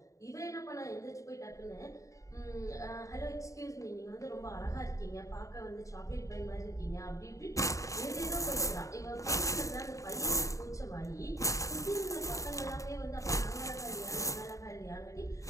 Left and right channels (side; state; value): right; late; 0.16 ms